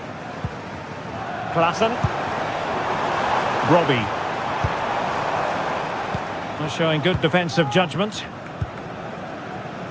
Klaassen. Robbie. Showing good defensive judgment.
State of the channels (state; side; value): identical; both; correlation 1.00